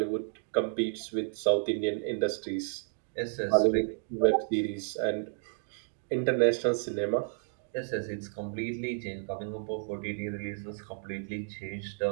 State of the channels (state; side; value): silent; left; digital silence